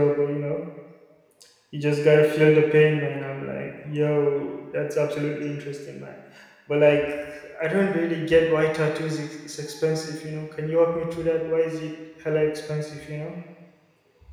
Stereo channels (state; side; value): identical; both; correlation 1.00